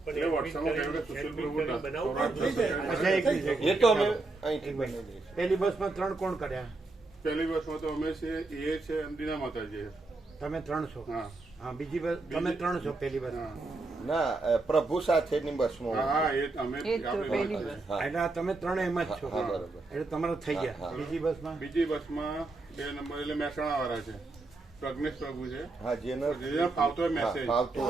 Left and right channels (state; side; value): quieter; left; 3.4 dB